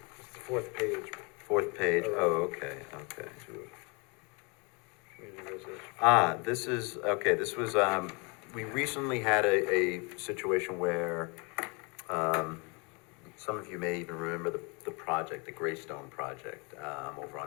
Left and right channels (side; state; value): right; quieter; 31.5 dB